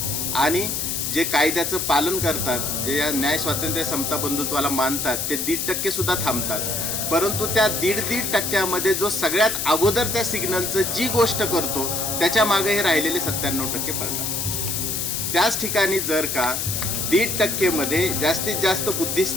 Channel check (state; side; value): noise; left; hiss, 1 dB below the sound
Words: आणि जे कायद्याचं पालन करतात, जे या न्याय, स्वातंत्र्य, समता, बंधुत्वाला मानतात ते 1.5% सुद्धा थांबतात. परंतु त्या 1.5% जो सगळ्यात अगोदर त्या सिग्नलचं जी गोष्ट करतो त्याच्या मागे हे राहिलेले 97% पडतात. त्याच ठिकाणी जर का 1.5% जास्तीत जास्त